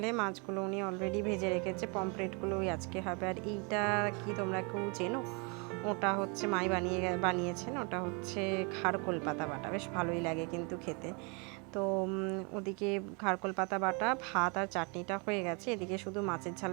মাছগুলো উনি অলরেডি ভেজে রেখেছে, পমফ্রেটগুলো ওই আজকে হবে। আর এইটা কি তোমরা কেউ চেনো? ওটা হচ্ছে মাই বানিয়েছেন, ওটা হচ্ছে খারকোল পাতা বাটা, বেশ ভালোই লাগে কিন্তু খেতে। তো ওদিকে খারকোল পাতা বাটা, ভাত আর চাটনিটা হয়ে গেছে, এদিকে শুধু মাছের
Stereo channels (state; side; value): quieter; left; 32.5 dB